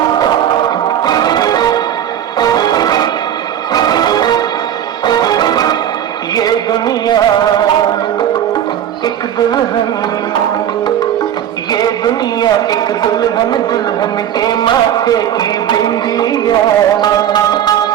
दुनिया एक दुल्हन, ये दुनिया एक दुल्हन, दुल्हन के माथे की बिंदिया।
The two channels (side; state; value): left; quieter; 10.3 dB